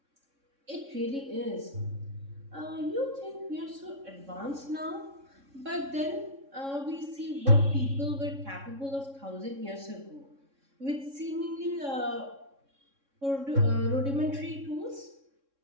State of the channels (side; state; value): left; late; 3.6 ms